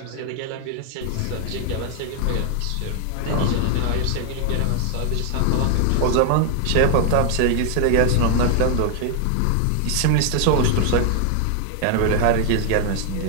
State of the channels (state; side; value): different; both; correlation 0.00